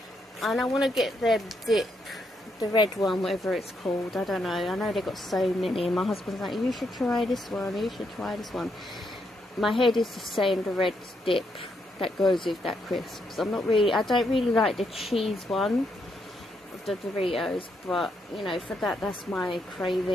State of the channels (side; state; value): both; normal; correlation 0.78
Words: And I want to get their dip. The red one, whatever it's called, I don't know. I know they've got so many, and my husband's like, you should try this one. My head is just saying the red dip that goes with that crisps. I don't really like the cheese one of the Doritos, but you know, for that's my